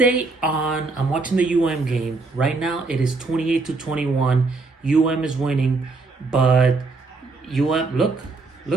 on, I'm watching the UM game. Right now, it is 28-21. UM is winning, but UM, look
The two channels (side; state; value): left; quieter; 3.7 dB